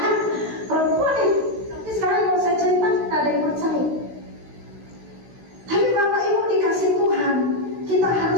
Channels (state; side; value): late; left; 16 ms